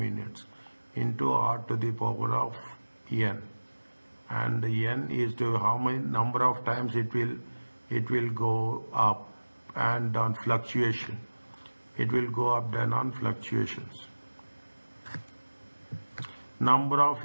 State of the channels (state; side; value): inverted; both; correlation -1.00